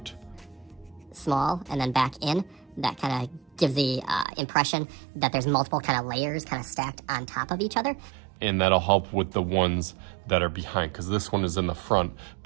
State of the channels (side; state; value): left; drops out; at 4.2 s